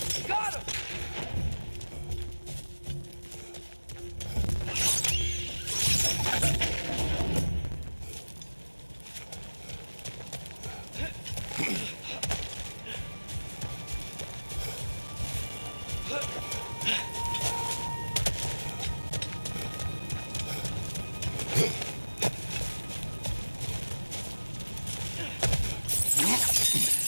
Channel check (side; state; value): both; inverted; correlation -1.00